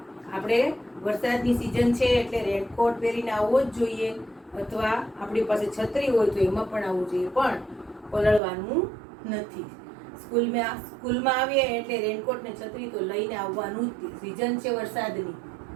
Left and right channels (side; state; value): left; drops out; at 8.4 s